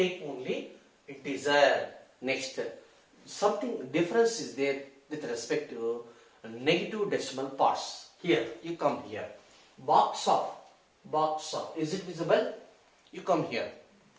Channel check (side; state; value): both; identical; correlation 1.00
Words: only integer. Next, something difference is there with respect to negative decimal parts. Here, you come here. Box of, is it visible? You come here.